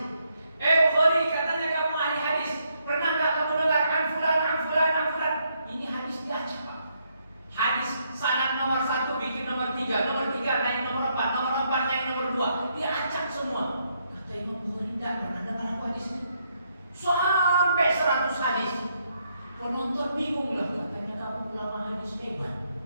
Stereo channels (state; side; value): inverted; both; correlation -0.76